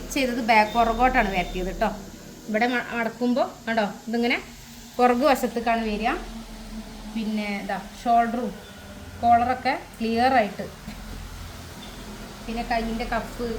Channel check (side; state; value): both; identical; correlation 1.00